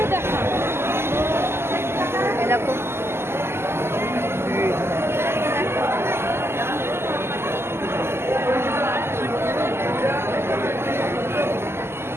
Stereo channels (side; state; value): left; late; 0.12 ms